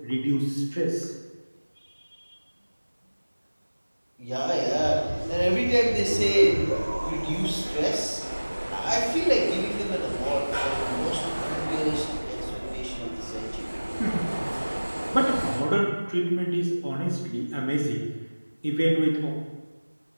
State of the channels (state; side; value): inverted; both; correlation -1.00